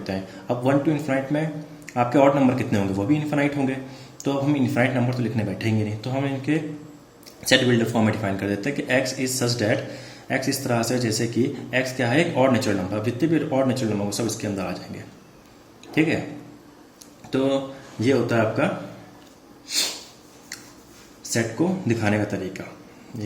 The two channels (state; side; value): identical; both; correlation 1.00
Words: हैं। अब 1 to इन्फिनाइट में आपके ऑड नंबर कितने होंगे? वो भी इन्फिनाइट होंगे। तो अब हम इन्फिनाइट नंबर तो लिखने बैठेंगे नहीं, तो हम इनके सेट बिल्डर फॉर्म में डिफाइन कर देते हैं कि x is such that, x इस तरह से जैसे कि x क्या है? एक ऑड नेचुरल नंबर। जितने भी ऑड नेचुरल नंबर सब इसके अंदर आ जाएंगे। ठीक है, तो ये होता है आपका सेट को दिखाने का तरीका,